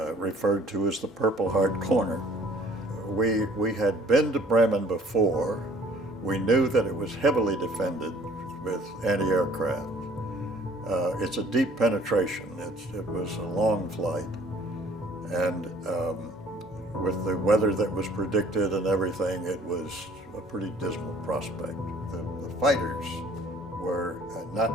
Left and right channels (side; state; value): both; normal; correlation 0.54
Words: referred to as the Purple Heart Corner. We had been to Bremen before. We knew that it was heavily defended with anti-aircraft. It's a deep penetration. It was a long flight. And with the weather that was predicted and everything, it was a pretty dismal prospect. The fighters were